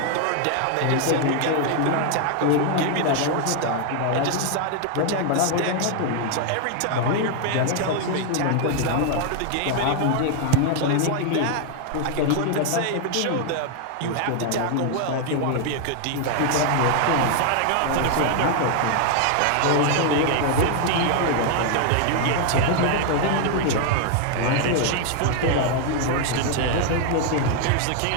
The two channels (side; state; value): both; different; correlation 0.00